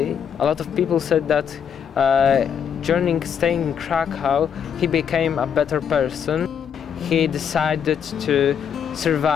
a lot of people said that during staying in Krakow, he became a better person. He decided to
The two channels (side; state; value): right; quieter; 7.8 dB